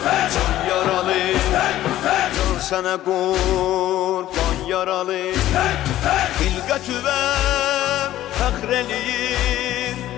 can yaralı, can sənə qurban yaralı. Xilqətüvəm fəxr eləyir,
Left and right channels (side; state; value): right; quieter; 13.8 dB